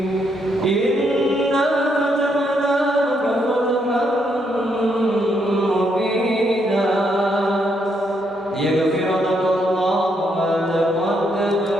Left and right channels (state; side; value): normal; both; correlation 0.76